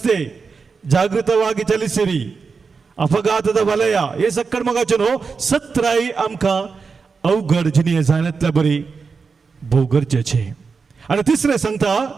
जागृतವಾಗಿ ಚಲಿಸಿರಿ ಅಪಘಾತದ ವಲಯ हे सक्कड मोगाचें सत्राय आमकां अवघड जिणे जाण्यातल्या बरी भोव गरजेचें. आनी तिसरें सांगता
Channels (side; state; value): left; quieter; 5.0 dB